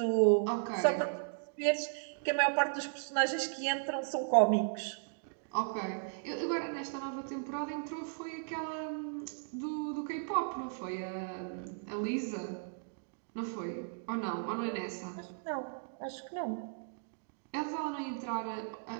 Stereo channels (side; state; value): left; silent; digital silence